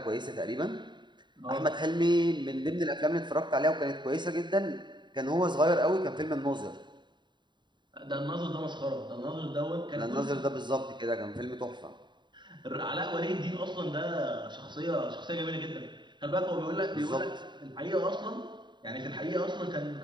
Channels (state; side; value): late; left; 0.22 ms